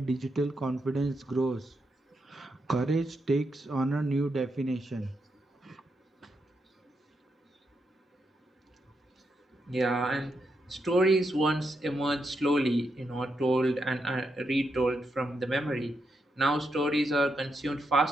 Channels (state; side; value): normal; both; correlation 0.82